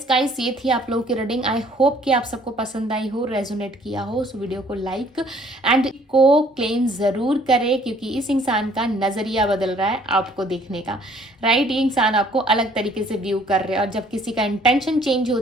गाइस, ये थी आप लोगों की रीडिंग। आई होप कि आप सबको पसंद आई हो, रेजोनेट किया हो। सो वीडियो को लाइक एंड को क्लेम ज़रूर करें, क्योंकि इस इंसान का नज़रिया बदल रहा है आपको देखने का, राइट। ये इंसान आपको अलग तरीके से व्यू कर रहे हैं, और जब किसी का इंटेंशन चेंज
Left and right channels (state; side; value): normal; both; correlation 0.59